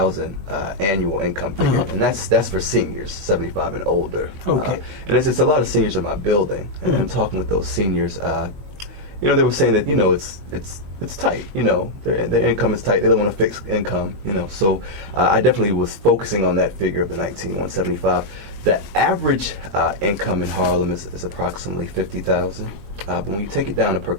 annual income figure, and that's for seniors, 75 and older. Okay. And it's a lot of seniors in my building, and I'm talking with those seniors. They were saying that it's tight. Their income is tight. They don't want a fixed income. So I definitely was focusing on that figure of the 19,175. The average income in Harlem is approximately 50,000. But when you take it down to per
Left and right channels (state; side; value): late; left; 20 ms